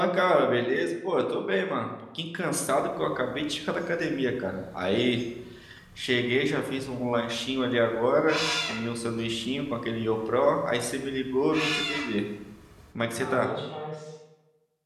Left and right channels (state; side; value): identical; both; correlation 1.00